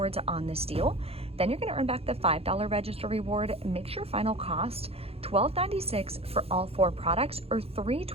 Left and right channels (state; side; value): late; left; 0.29 ms